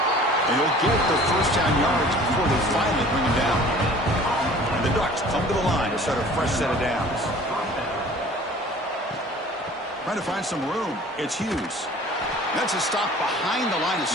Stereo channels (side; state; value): both; normal; correlation 0.48